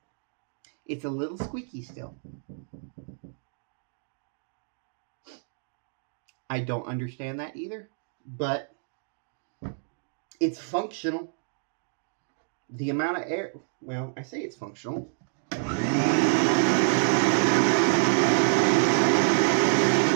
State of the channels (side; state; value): left; silent; digital silence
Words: It's a little squeaky still. I don't understand that either, but it's functional. The amount of air, well, I say it's functional. Yeah,